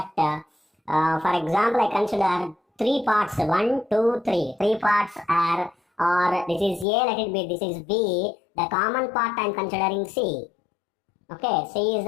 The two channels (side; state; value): right; drops out; at 6.9 s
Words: For example, I consider 3 parts, 1, 2, 3. 3 parts are, or this is A, let it be, this is B. The common part I am considering C. Okay, C is